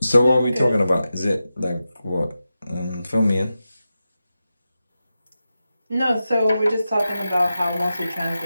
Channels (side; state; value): both; inverted; correlation -0.92